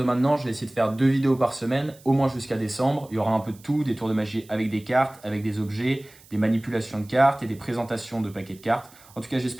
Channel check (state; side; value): noise; right; hiss, 25 dB below the sound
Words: maintenant, je vais essayer de faire 2 vidéos par semaine, au moins jusqu'à décembre. Il y aura un peu de tout, des tours de magie avec des cartes, avec des objets, des manipulations de cartes et des présentations de paquets de cartes. En tout cas,